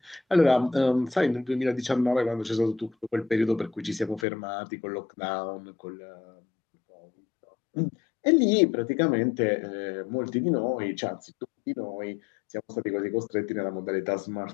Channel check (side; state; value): right; drops out; at 4.2 s